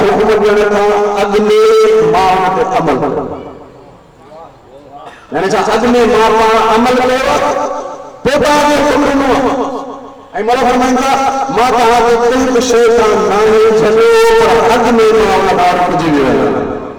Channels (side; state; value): both; identical; correlation 1.00